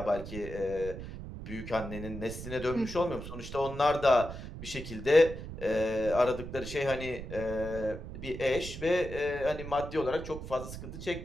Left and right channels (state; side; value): noise; right; rumble, 9 dB below the sound